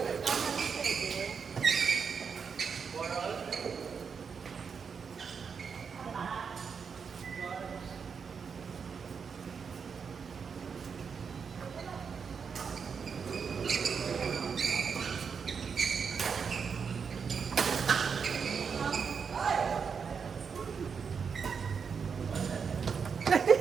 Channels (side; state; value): left; quieter; 6.1 dB